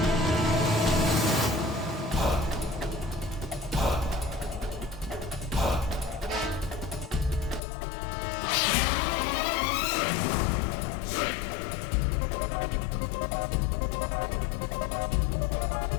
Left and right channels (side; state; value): right; drops out; at 7.6 s